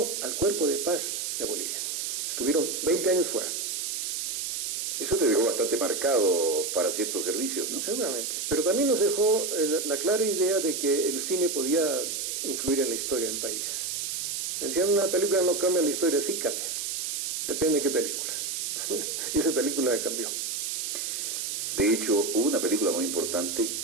al Cuerpo de Paz de Bolivia. Estuvieron 20 años fuera. Eso te dejó bastante marcado para ciertos servicios, ¿no? Seguramente. Pero también nos dejó la clara idea de que el cine podía influir en la historia del país. Decían, una película no cambia la historia, sí cambia. Depende de qué película. Y esa película cambió. De hecho, hubo una película muy importante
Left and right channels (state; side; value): noise; right; hiss, 2 dB below the sound